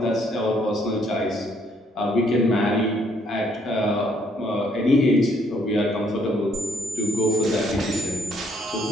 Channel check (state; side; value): normal; both; correlation 0.68